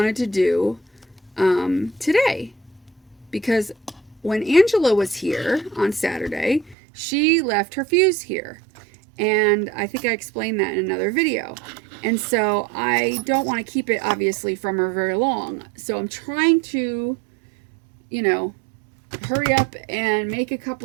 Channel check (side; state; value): left; drops out; at 6.8 s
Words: to do today, because when Angela was here on Saturday, she left her fuse here. And I think I explained that in another video. And so I don't want to keep it, obviously, from her very long. So I'm trying to, you know, hurry up and make a